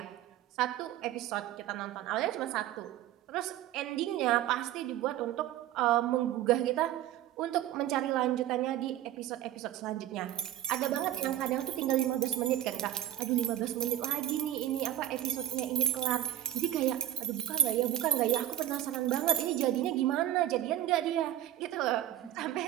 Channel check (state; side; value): quieter; left; 12.5 dB